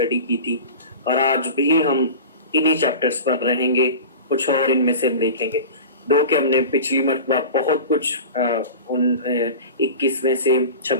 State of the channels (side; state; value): both; inverted; correlation -0.33